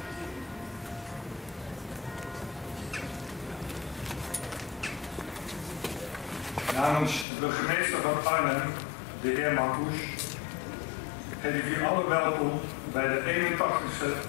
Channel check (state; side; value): drops out; right; at 7.2 s